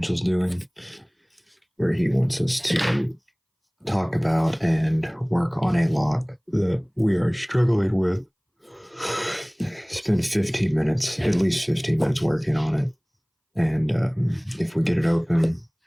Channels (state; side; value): identical; both; correlation 1.00